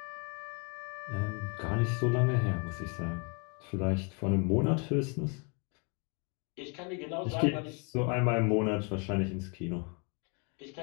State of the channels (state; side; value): quieter; right; 35.3 dB